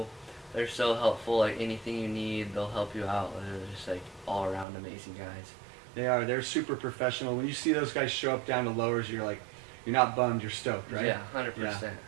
They're so helpful. Like anything you need, they'll help you out. They're just like all around amazing guys. They are. They're super professional. When you see those guys show up down to lowers, you're not bummed. You're stoked, right? Yeah, 100%. Yeah,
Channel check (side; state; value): left; drops out; at 4.7 s